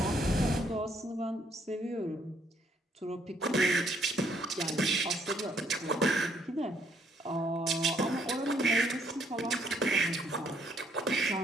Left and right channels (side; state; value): both; normal; correlation 0.69